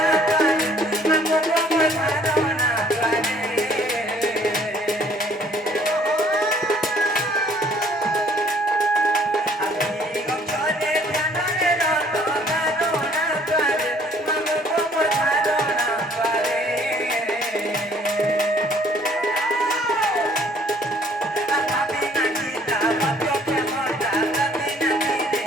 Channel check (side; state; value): both; normal; correlation 0.59